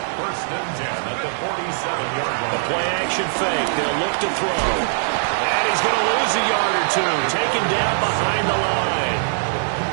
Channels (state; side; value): silent; left; digital silence